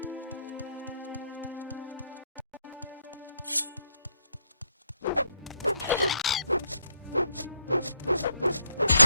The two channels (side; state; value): both; inverted; correlation -0.74